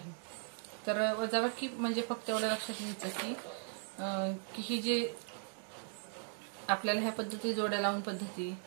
तर वजाबाकी म्हणजे फक्त एवढं लक्षात घ्यायचं की ही जी आपल्याला ह्या पद्धती जोड्या लावून पद्धती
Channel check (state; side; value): silent; left; 52 dB below the other